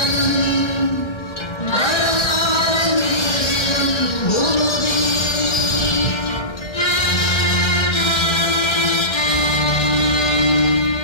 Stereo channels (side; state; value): right; late; 1.8 ms